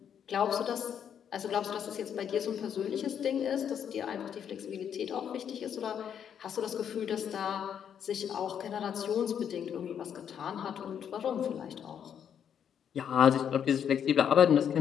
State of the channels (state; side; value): quieter; right; 8.5 dB